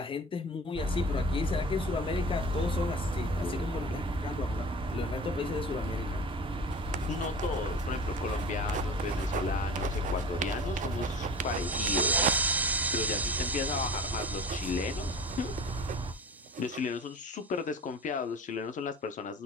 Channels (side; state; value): both; normal; correlation 0.38